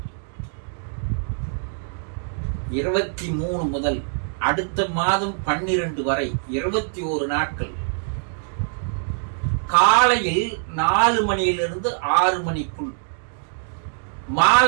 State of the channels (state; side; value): silent; left; digital silence